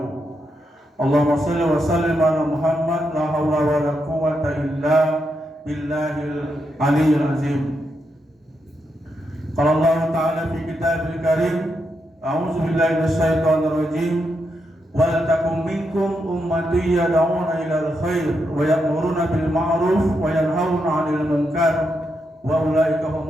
Allahumma shalli wa sallim ala Muhammad la haula wa la quwwata illa billahil aliyyil azim. Qala Allah ta'ala fi kitabil karim, a'udzu billahi minasyaitonir rajim. Wal takum minkum ummatun yad'una ilal khair wa ya'muruna bil ma'ruf wa yanhauna 'anil munkar wa ulaika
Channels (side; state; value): both; normal; correlation 0.83